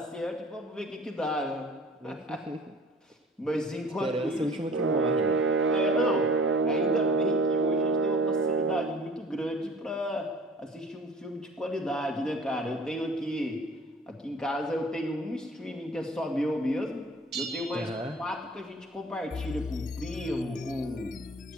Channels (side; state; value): both; normal; correlation 0.47